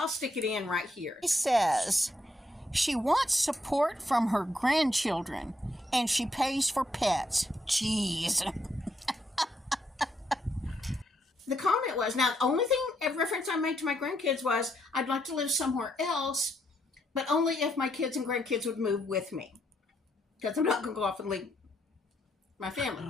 stick it in right here. It says, she wants support from her grandchildren, and she pays for pets. Jeez. The comment was, now the only thing, a reference I made to my grandkids was, I'd like to live somewhere else, but only if my kids and grandkids would move with me. Because I'm not going to go off and leave my family.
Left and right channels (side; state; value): both; normal; correlation 0.76